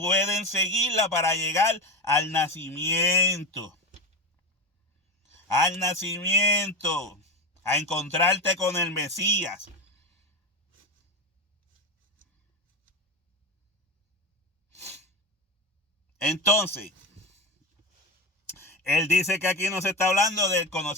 seguirla para llegar al nacimiento. Al a encontrarte con el Mesías. Entonces, él dice que aquí no se está hablando del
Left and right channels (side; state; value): both; normal; correlation 0.19